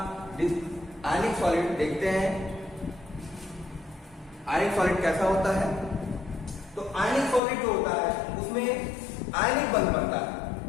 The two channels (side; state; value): right; drops out; at 7.4 s